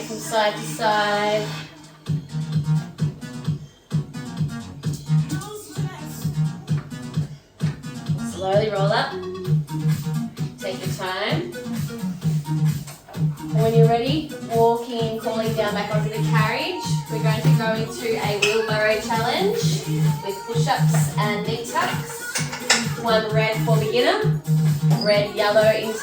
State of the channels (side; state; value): both; identical; correlation 1.00